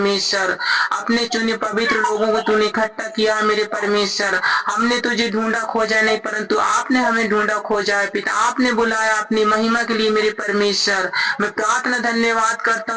अपने चुने पवित्र लोगों को तूने इकट्ठा किया मेरे परमेश्वर। हमने तुझे ढूंढा खोजा नहीं, परंतु आपने हमें ढूंढा खोजा है पिता, आपने बुलाया अपनी महिमा के लिए मेरे परमेश्वर। मैं प्रार्थना धन्यवाद करता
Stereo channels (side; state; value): both; identical; correlation 1.00